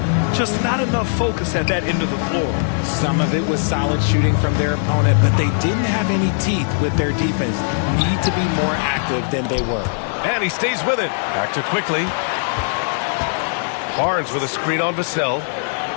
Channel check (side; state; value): right; silent; 66 dB below the other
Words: Just not enough focus at that end of the floor. Some of it was solid shooting from their opponent, but they didn't have any teeth with their defense. Need to be more active than they were. And he stays with it. Back to Quickly. Barnes with a screen on Vassell.